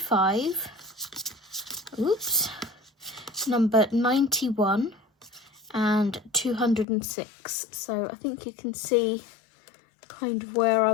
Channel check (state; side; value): drops out; right; at 6.9 s